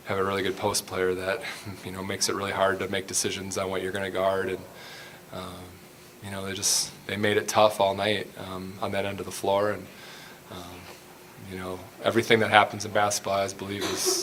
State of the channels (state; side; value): identical; both; correlation 1.00